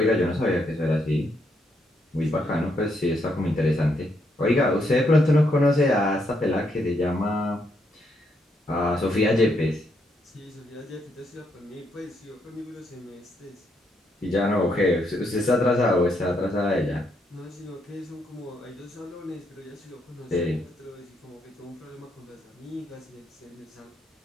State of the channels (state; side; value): normal; both; correlation 0.76